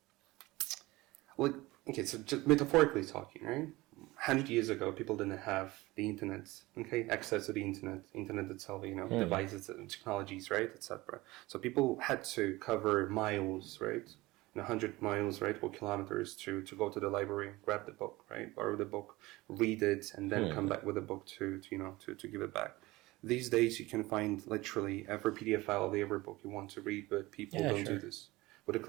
so just metaphorically talking, right? 100 years ago, people didn't have the internet, access to the internet itself, devices, technologies, right, etc. So people had to cover miles, right, 100 miles, right, or kilometers to go to the library, grab the book, right, borrow the book, read it, and then come back with the book to give it back. These days, you can find literally every PDF file of every book you want to read, but people don't do this. With a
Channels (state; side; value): quieter; left; 20.3 dB